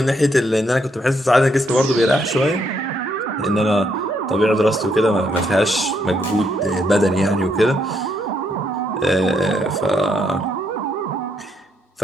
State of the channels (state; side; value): normal; both; correlation 0.75